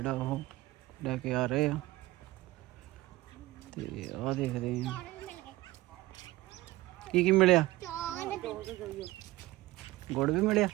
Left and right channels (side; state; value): left; quieter; 18.5 dB